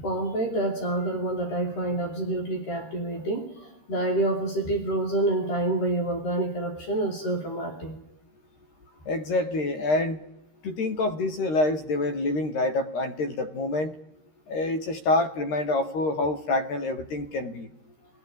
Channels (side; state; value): right; late; 13 ms